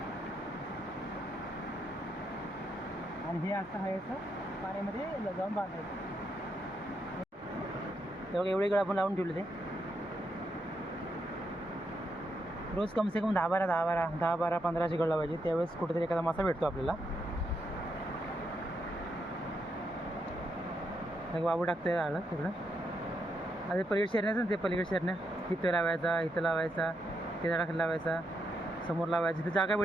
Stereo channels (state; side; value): normal; both; correlation 0.80